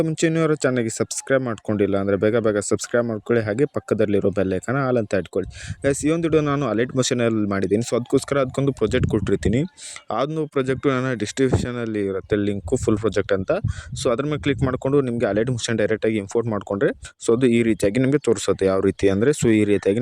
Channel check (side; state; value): both; identical; correlation 1.00